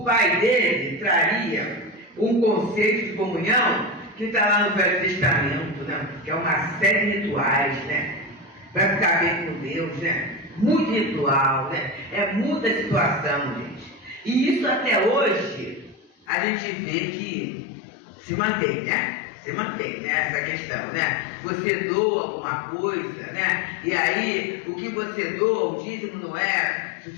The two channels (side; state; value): right; drops out; at 16.2 s